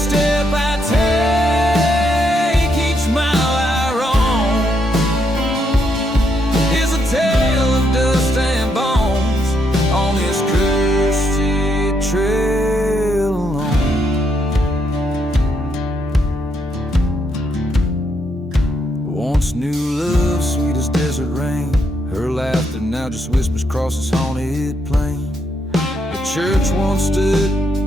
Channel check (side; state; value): both; normal; correlation 0.77